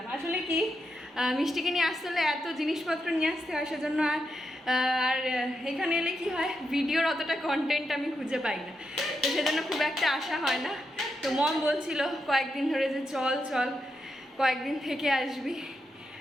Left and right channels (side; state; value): both; normal; correlation 0.85